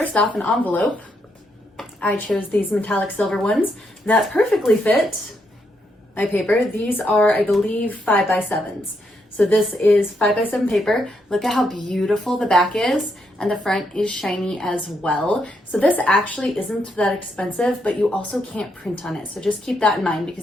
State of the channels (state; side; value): normal; both; correlation 0.78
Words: off, an envelope. I chose these metallic silver ones that perfectly fit my paper. These are, I believe, 5x7s. So this is 5x7 paper. Look at how beautiful the back is, and the front is shiny as well. So this actually isn't that expensive, but you also can't print on it. So just keep that in mind